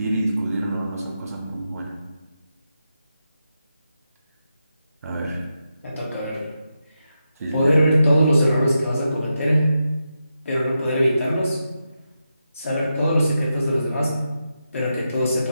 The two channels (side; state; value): both; inverted; correlation -0.87